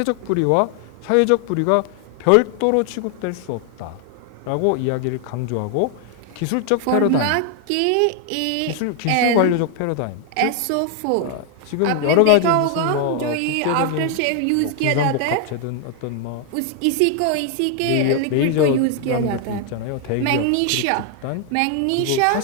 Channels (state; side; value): different; both; correlation 0.00